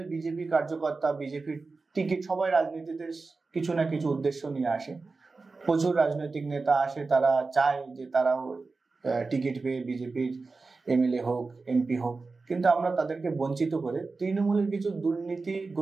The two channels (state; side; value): quieter; left; 4.0 dB